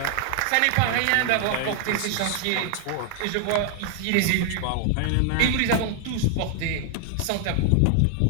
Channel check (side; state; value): both; different; correlation 0.00